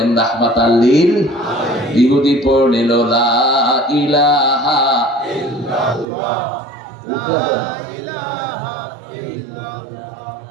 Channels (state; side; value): drops out; left; at 6.1 s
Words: রাহমাতাল লিল। ইহুদি পড়ে নিল লা ইলাহা ইল্লাল্লাহ,